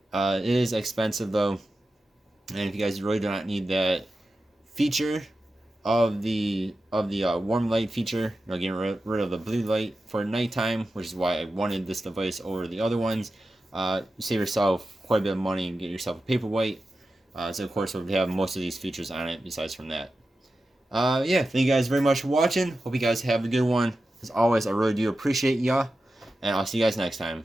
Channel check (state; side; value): normal; both; correlation 0.92